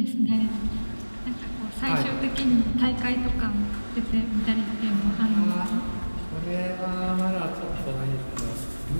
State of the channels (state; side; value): inverted; both; correlation -1.00